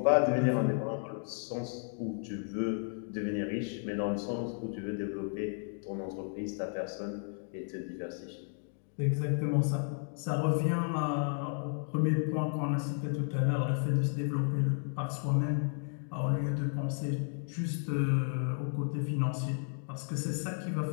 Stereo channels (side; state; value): right; silent; 56 dB below the other